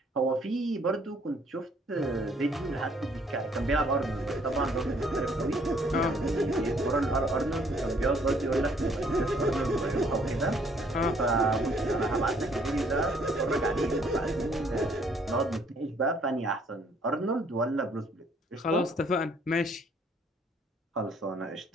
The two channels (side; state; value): both; normal; correlation 0.63